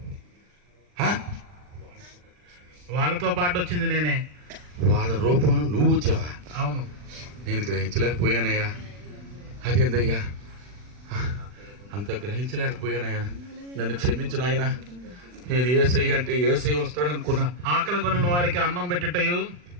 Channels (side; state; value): left; late; 40 ms